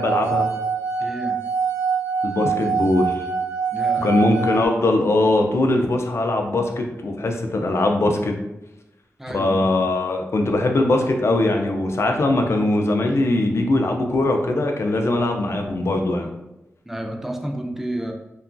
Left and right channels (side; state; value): both; normal; correlation 0.81